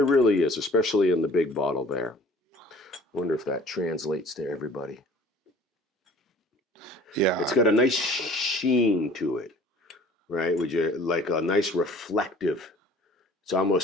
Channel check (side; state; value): both; normal; correlation 0.49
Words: really is, especially in the big bottle there. Wonder if that translates to everybody. Yeah. It's got a nice sheen to it, right? Would you like a nice reflective? It's